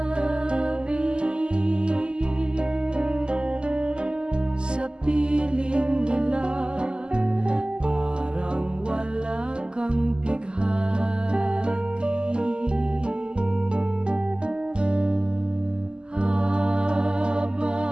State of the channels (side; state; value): left; late; 0.048 ms